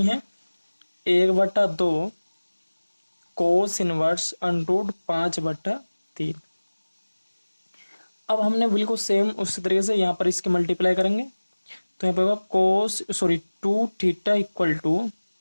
है 1/2 कोस इनवर्स √5/3। अब हमने बिल्कुल सेम उसी तरीके से यहाँ पर इसके मल्टीप्लाई करेंगे, तो यहाँ पे होगा 2 theta equal to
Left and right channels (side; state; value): both; inverted; correlation -1.00